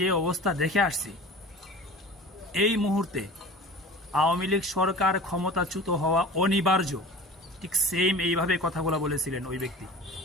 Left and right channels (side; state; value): both; normal; correlation 0.39